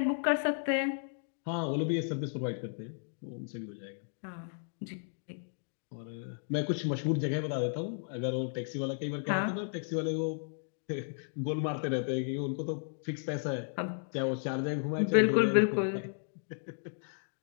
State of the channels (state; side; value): silent; right; digital silence